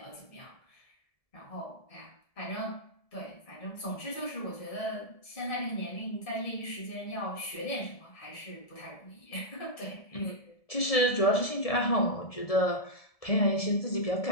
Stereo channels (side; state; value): right; late; 1.7 ms